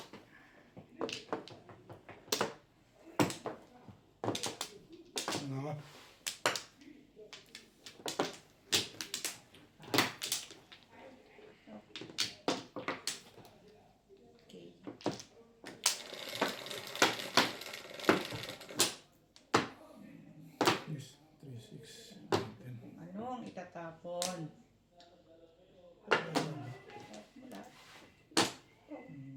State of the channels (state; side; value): identical; both; correlation 1.00